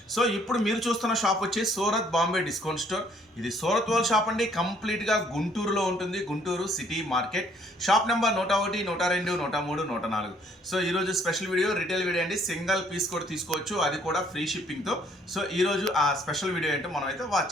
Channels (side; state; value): both; normal; correlation 0.63